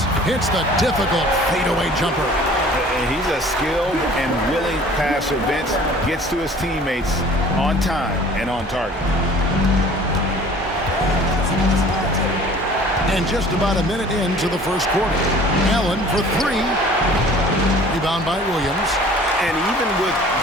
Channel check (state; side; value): normal; both; correlation 0.49